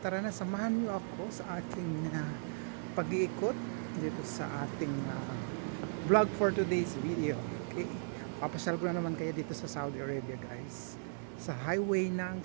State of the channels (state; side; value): silent; left; digital silence